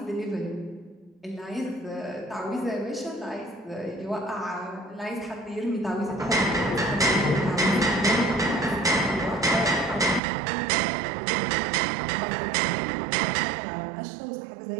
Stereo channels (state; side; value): drops out; left; at 10.2 s